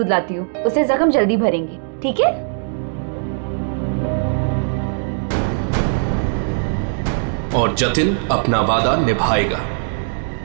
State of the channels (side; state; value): left; silent; digital silence